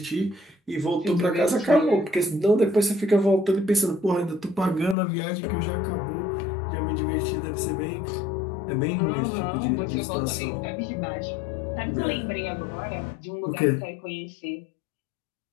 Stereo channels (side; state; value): right; drops out; at 5.0 s